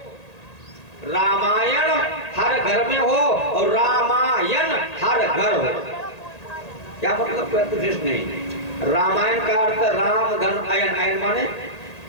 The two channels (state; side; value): late; right; 1.8 ms